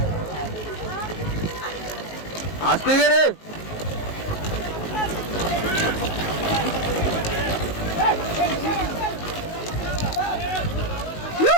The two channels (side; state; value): right; late; 19 ms